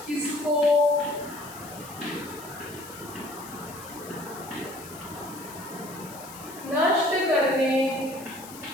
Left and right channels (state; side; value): noise; left; hiss, 16 dB below the sound